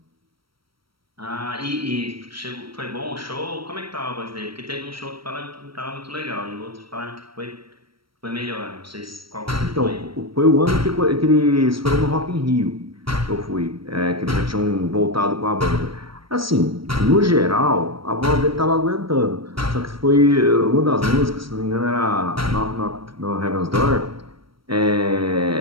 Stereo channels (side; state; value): left; late; 0.75 ms